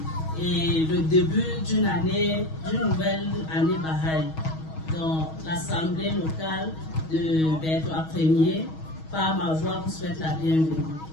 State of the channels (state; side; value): late; right; 6.3 ms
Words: et le début d'une nouvelle année Baha'i. Donc, l'Assemblée locale de Berthois Ier, par ma voix, vous souhaite la bienvenue.